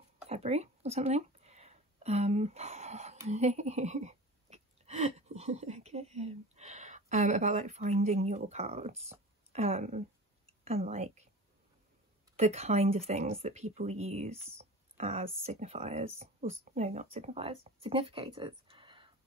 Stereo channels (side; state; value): both; normal; correlation 0.35